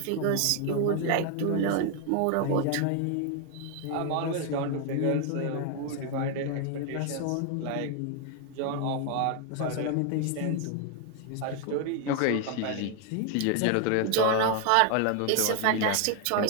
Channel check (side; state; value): both; different; correlation 0.01